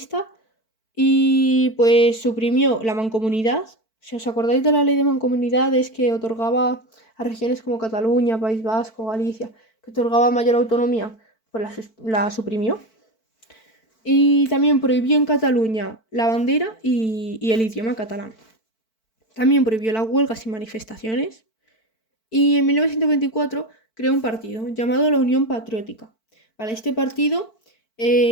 y pues suprimió la mancomunidad. Si os acordáis de la ley de mancomunidades que otorgaba a regiones como Cataluña, País Vasco, Galicia, que otorgaba mayor autonomía, pues la suprimió. Y también prohibió en Cataluña la bandera y el idioma catalán. También prohibió las huelgas y manifestaciones. Y en 1924 creó un partido llamado la Unión Patriótica. Para este partido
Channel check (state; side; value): late; right; 4.5 ms